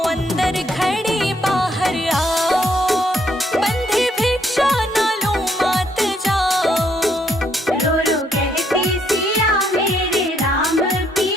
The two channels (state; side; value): normal; both; correlation 0.71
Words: अंदर खड़ी बाहर आओ, बंधे भिक्षा ना लो मात जाओ। रो रो कहती सिया मेरे राम